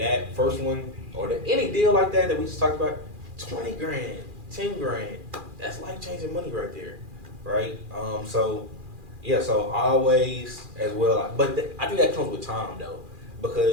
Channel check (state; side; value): late; left; 2.4 ms